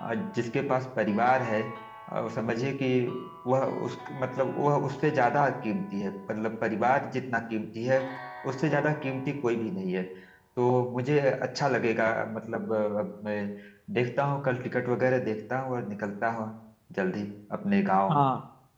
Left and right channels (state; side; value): identical; both; correlation 1.00